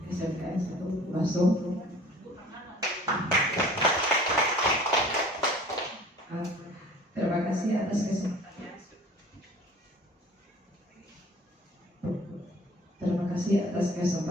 SMKN 1 Basung. Terima kasih atas kesempatannya. Terima kasih atas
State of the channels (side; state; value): both; normal; correlation 0.47